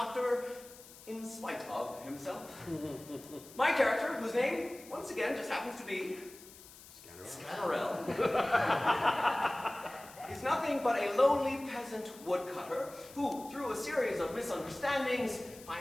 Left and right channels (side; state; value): left; noise; hiss, 19 dB below the sound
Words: in spite of himself. My character, whose name, once again, just happens to be Scannerell, is nothing but a lowly peasant woodcutter who, through a series of misunderstandings,